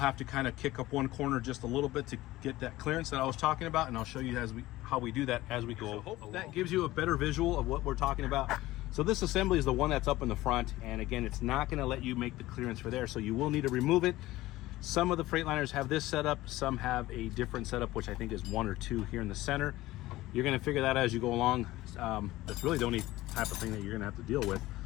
to kind of kick up one corner just a little bit to get that clearance that I was talking about, and I'll show you how we do that as we go. So hope that gives you a better visual of what we're talking about. So this assembly is the one that's up in the front, and again, it's not going to let you make the clearance for there, so you will need to remove it. Some of the Freightliners have this setup, some have a different setup, which I think is 1 or 2 here in the center. You're going to figure that out as you go along. That's really the only type of thing that you're going to have to deal with.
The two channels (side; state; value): right; quieter; 17.3 dB